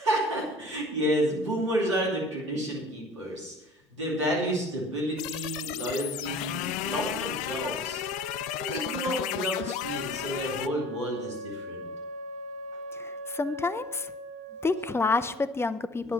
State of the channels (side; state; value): both; normal; correlation 0.46